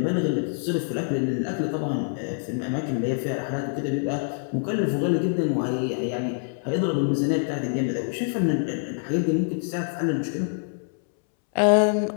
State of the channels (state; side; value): silent; right; 61 dB below the other